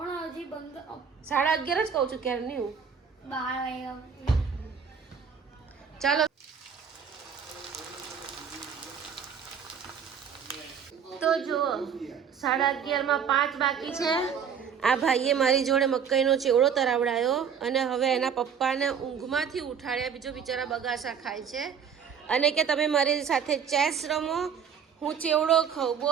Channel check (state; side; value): quieter; left; 7.2 dB